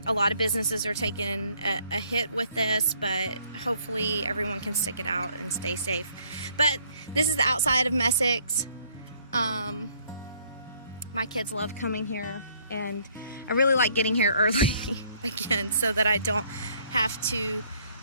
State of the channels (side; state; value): both; inverted; correlation -0.64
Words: A lot of businesses are taking a hit with this, but hopefully everyone can stick it out and stay safe. But this is the outside of Messicks. My kids love coming here, and I really like getting here early again so that I don't have to